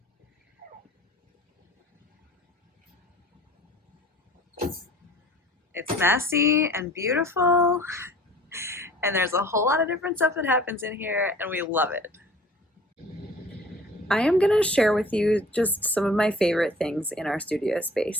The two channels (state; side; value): normal; both; correlation 0.49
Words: It's messy and beautiful, and there's a whole lot of different stuff that happens in here, and we love it. I am going to share with you just some of my favorite things in our studio